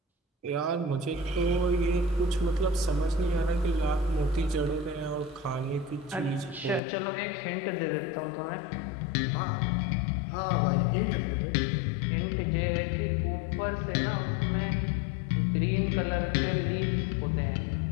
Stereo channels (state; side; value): drops out; right; at 6.8 s